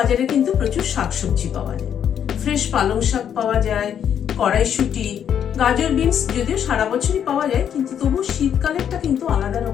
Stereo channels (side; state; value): right; quieter; 8.9 dB